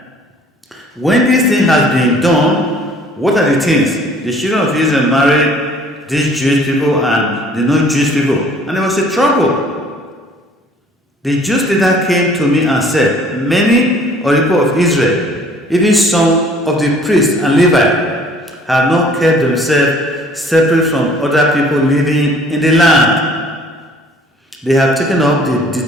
When this thing has been done, what are the things? The children of Israel married these Jewish people and the non-Jewish people. And there was a trouble. The Jews leader came to me and said, many of the people of Israel, even some of the priests and Levites, have not kept themselves separate from other people living in the land. They have taken up the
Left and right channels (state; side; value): normal; both; correlation 0.54